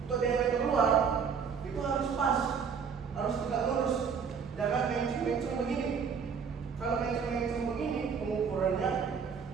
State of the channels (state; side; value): quieter; left; 6.4 dB